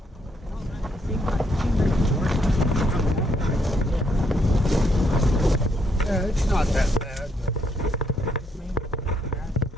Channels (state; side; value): normal; both; correlation 0.74